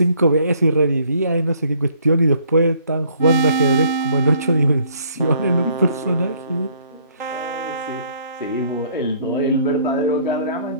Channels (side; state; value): both; inverted; correlation -0.62